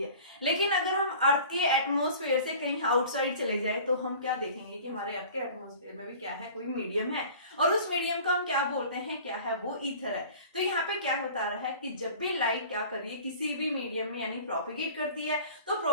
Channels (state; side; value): inverted; both; correlation -0.43